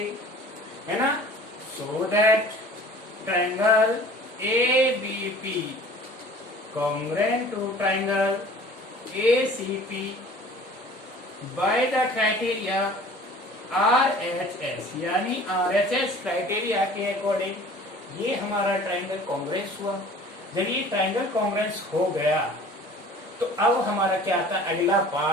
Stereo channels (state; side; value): normal; both; correlation 0.46